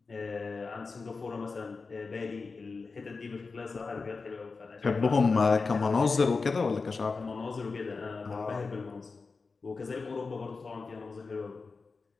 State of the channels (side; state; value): right; quieter; 4.4 dB